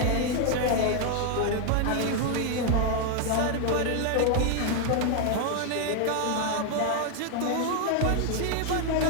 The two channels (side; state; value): both; different; correlation 0.00